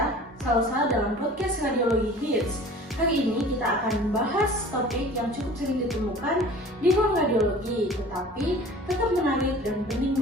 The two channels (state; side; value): normal; both; correlation 0.45